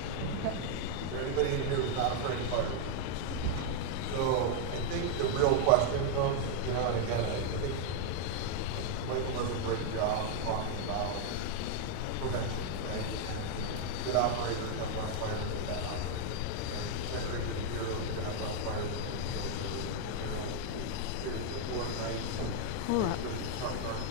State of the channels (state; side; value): different; both; correlation 0.00